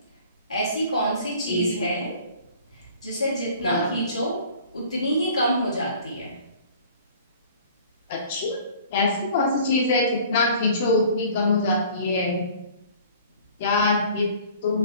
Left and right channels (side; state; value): both; inverted; correlation -0.49